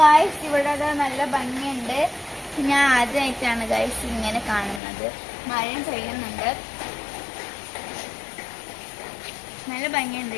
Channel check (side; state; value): right; drops out; at 4.8 s